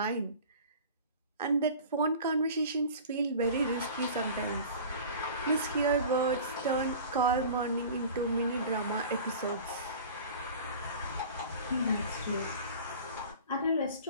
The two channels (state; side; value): inverted; both; correlation -0.39